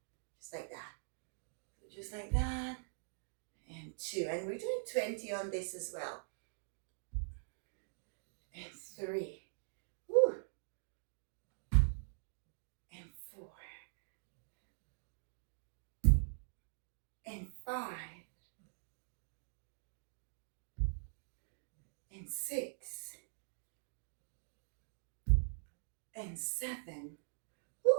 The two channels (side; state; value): left; silent; digital silence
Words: Just like that. Just like that. And 2. And we're doing 20 on this as well. And 3. Woo. And 4. And 5. And 6. And 7,